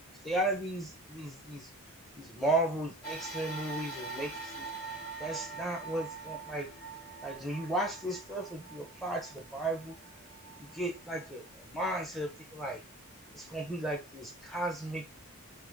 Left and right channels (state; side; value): normal; both; correlation 0.43